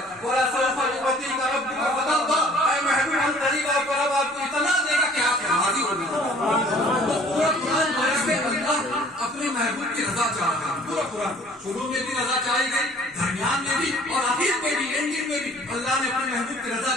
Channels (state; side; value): normal; both; correlation 0.54